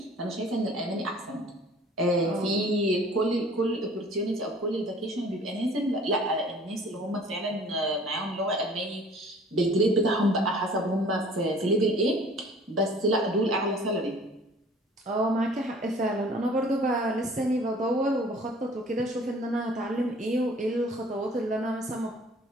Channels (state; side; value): normal; both; correlation 0.50